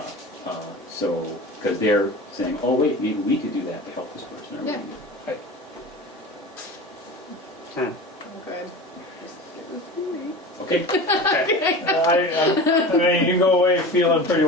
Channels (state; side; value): normal; both; correlation 0.33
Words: Because they're saying, oh wait, maybe we could do that to help this person. Or Yeah. maybe- Good. Okay, I mean, you go away feeling pretty